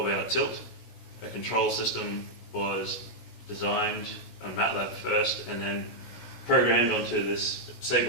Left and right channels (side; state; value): right; late; 16 ms